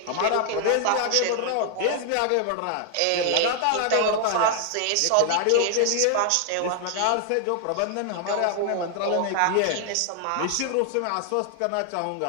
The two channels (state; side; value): different; both; correlation 0.00